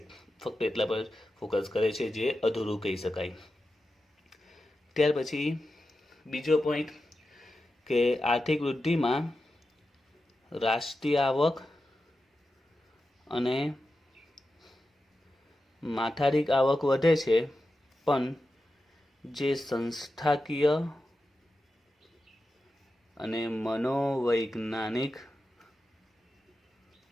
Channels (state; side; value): normal; both; correlation 0.91